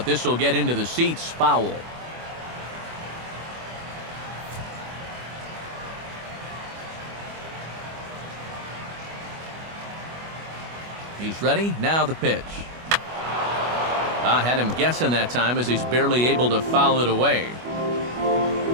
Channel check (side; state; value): left; late; 25 ms